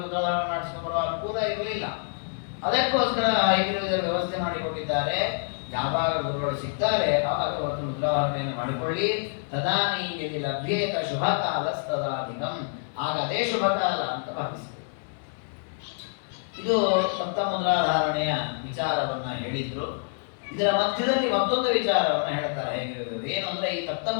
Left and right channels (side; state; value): right; silent; digital silence